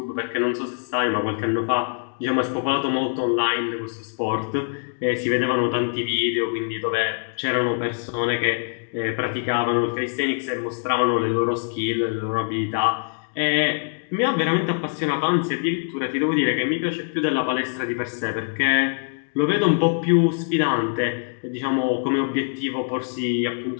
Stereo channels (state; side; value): silent; right; digital silence